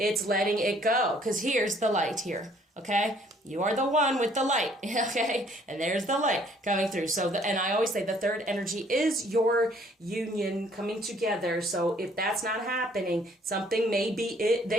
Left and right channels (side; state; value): both; normal; correlation 0.61